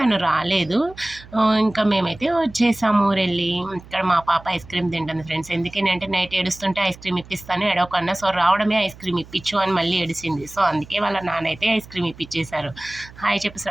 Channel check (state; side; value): noise; right; hum, 20 dB below the sound